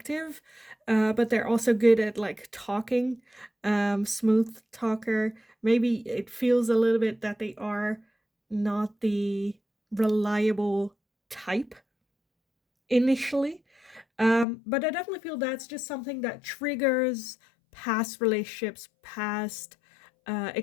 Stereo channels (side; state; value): right; drops out; at 14.5 s